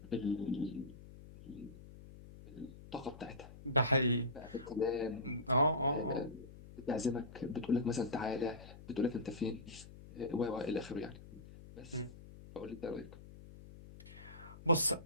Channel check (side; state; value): left; noise; hum, 17 dB below the sound